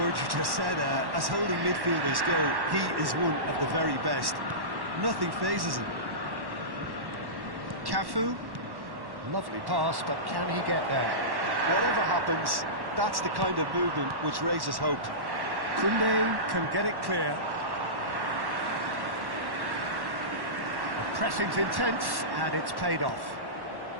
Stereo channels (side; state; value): left; late; 1.1 ms